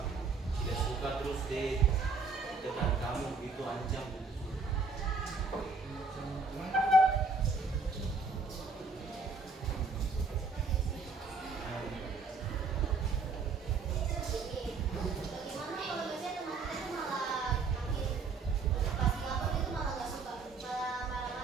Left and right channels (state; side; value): quieter; left; 4.4 dB